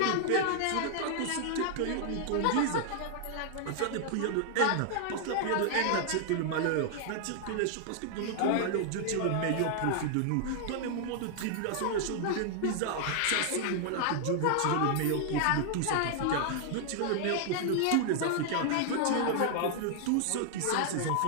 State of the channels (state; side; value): different; both; correlation -0.01